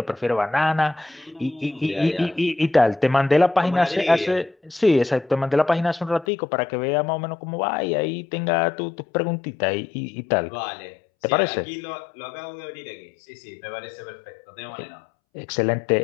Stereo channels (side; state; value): right; drops out; at 6.2 s